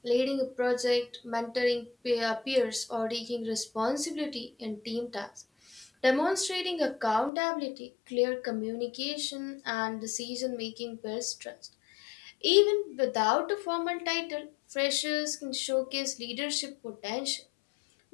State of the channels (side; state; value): right; drops out; at 7.3 s